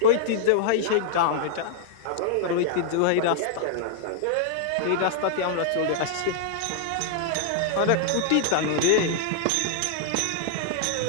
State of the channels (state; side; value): different; both; correlation -0.01